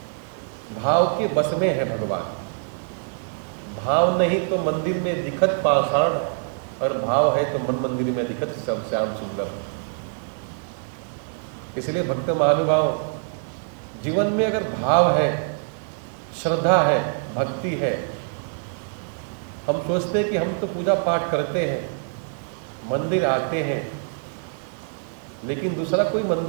भाव के बस में है भगवान, भाव नहीं तो मंदिर में दिखत पाषाण, और भाव है तो मन मंदिर में दिखत सब श्याम सुंदर। इसलिए भक्त महानुभाव जीवन में अगर भाव है, श्रद्धा है, भक्ति है, हम सोचते हैं कि हम तो पूजा पाठ करते हैं, मंदिर आते हैं, लेकिन दूसरा कोई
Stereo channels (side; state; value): left; silent; 62 dB below the other